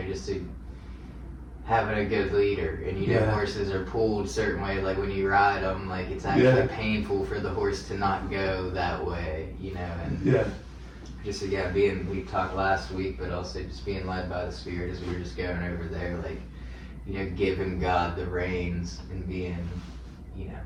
just to having a good leader. And Yeah. horses are pulled a certain way, like when you ride them, like it's actually painful for the horse to not go that way, and Yeah. just again we talked last week, but also just being led by the Spirit as we were just going over there, like giving God the reins and being,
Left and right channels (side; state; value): both; identical; correlation 1.00